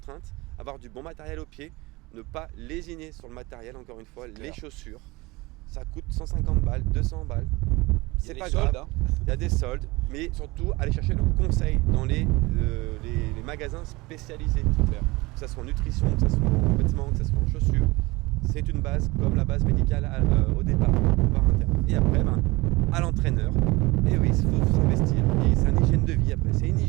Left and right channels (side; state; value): left; quieter; 22.7 dB